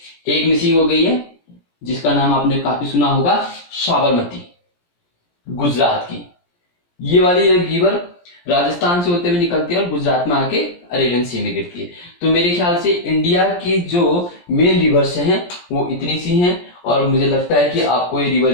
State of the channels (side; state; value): right; late; 17 ms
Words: एक मिसिंग हो गई है जिसका नाम आपने काफी सुना होगा, साबरमती, गुजरात की। ये वाली रिवर राजस्थान से होते हुए निकलती है और गुजरात में आके अरेबियन सी में गिरती है। तो मेरे ख्याल से इंडिया की जो मेन रिवर्स हैं वो इतनी सी हैं, और मुझे लगता है कि आपको ये